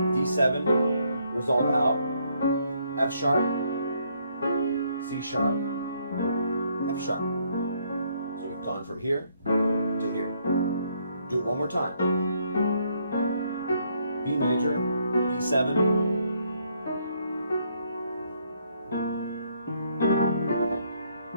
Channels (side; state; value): both; inverted; correlation -0.71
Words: resolve out, F sharp, C sharp, F sharp. So we've gone from here to here. Do it one more time. B major, B7,